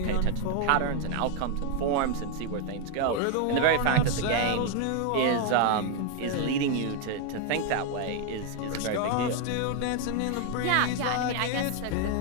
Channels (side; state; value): both; different; correlation 0.01